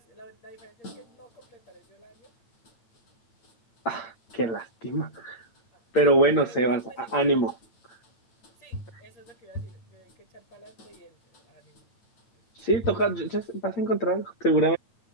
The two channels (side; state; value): right; late; 8.8 ms